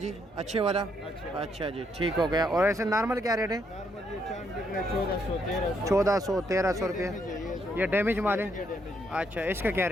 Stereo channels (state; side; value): normal; both; correlation 0.74